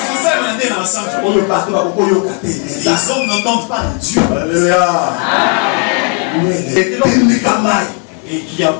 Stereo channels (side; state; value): right; quieter; 32.7 dB